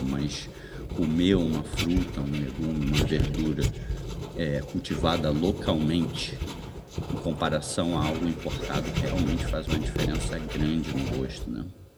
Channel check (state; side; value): identical; both; correlation 1.00